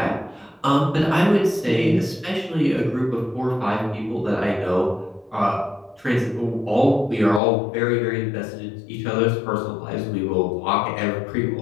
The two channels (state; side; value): drops out; right; at 7.4 s